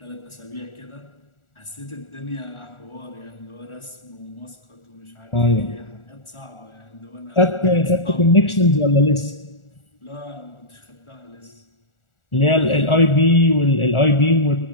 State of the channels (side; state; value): right; late; 1.4 ms